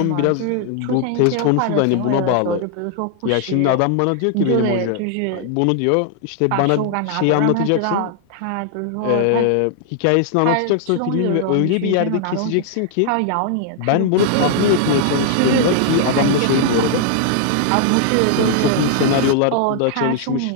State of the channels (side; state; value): both; different; correlation 0.00